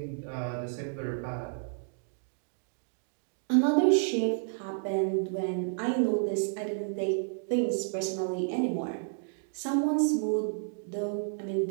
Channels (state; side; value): silent; left; digital silence